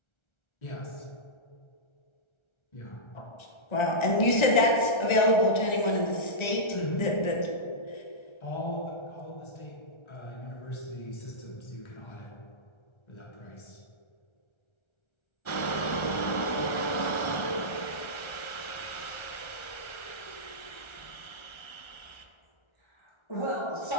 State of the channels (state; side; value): late; right; 1.3 ms